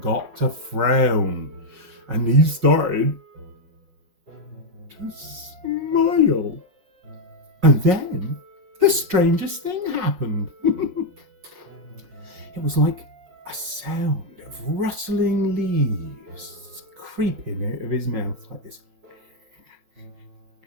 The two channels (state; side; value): late; left; 5.4 ms